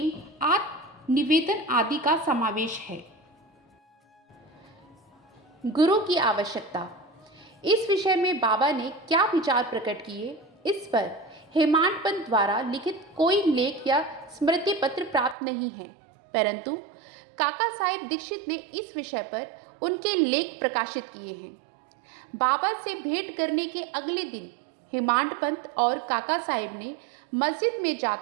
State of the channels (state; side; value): drops out; left; at 15.4 s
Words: आत्मनिवेदन आदि का समावेश है। गुरु की आवश्यकता। इस विषय में बाबा ने क्या विचार प्रकट किए, इस पर हेमांड पंत द्वारा लिखित कोई लेख या स्मृति पत्र प्राप्त नहीं है, परंतु काका साहेब दीक्षित ने इस विषय पर उनके लेख प्रकाशित किए हैं। बाबा से भेंट करने के अगले दिन हेमांड पंत और काका साहेब ने मस्जिद में